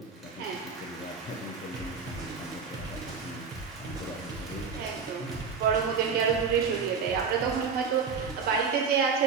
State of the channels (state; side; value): quieter; left; 5.6 dB